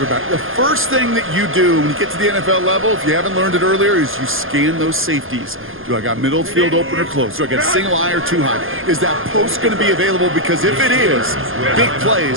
the first thing that you do when you get to the NFL level, if you haven't learned it earlier, is you scan those safeties. Do I got middle field open or close? Do I got single high or 2 high? Is that post going to be available? Because if it is, big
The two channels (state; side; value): late; left; 0.59 ms